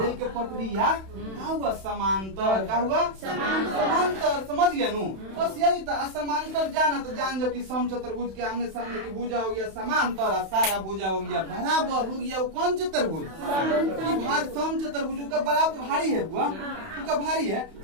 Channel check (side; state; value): left; late; 31 ms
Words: के पटरिया क्या हुआ, समांतर क्या हुआ, समांतर। समझ गया नु, बस यही था। समांतर जाना तो जान जो कि सम चतुर्भुज के आमने सामने की भुजा हो गया समांतर, सारा भुजा हो गया बराबर हो गया। वो कौन चतुर्भुज, भार सम चतुर्भुज का बराबर भारी है बुआ, उसका भारी है।